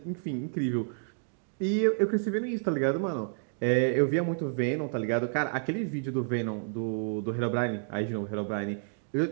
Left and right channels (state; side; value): silent; left; digital silence